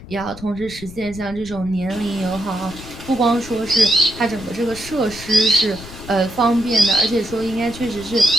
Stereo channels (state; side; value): noise; left; rumble, 15 dB below the sound